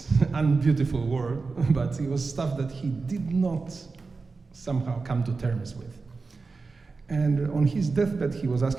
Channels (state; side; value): quieter; left; 4.2 dB